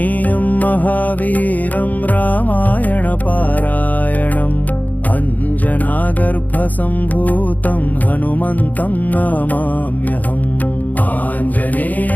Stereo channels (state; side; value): late; right; 0.080 ms